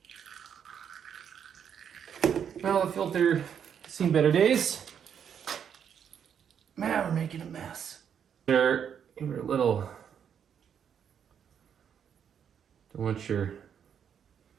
Well, the filter seen better days. Man, we're making a mess. They're a little. Don't want your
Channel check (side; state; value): left; quieter; 8.1 dB